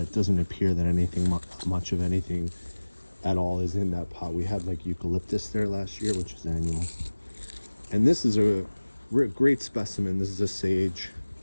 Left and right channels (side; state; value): both; inverted; correlation -1.00